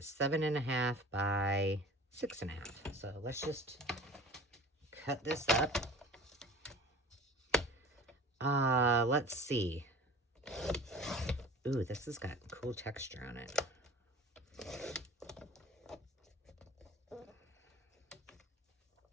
7.5 by 6.5. So let's just cut this up. Let's see. Ooh, this has got cool texture on it.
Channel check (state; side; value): normal; both; correlation 0.41